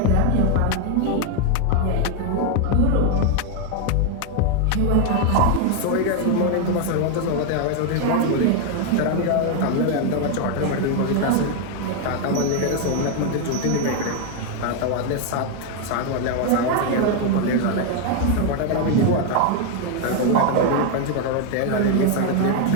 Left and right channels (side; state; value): both; different; correlation 0.01